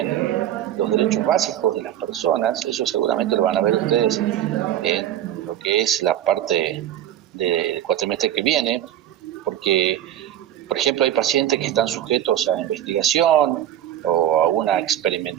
los derechos básicos de las personas. Eso seguramente lo van a ver ustedes en lo que es la parte del cuatrimestre que viene, porque, por ejemplo, hay pacientes que están sujetos a investigación o a una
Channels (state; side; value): quieter; left; 11.5 dB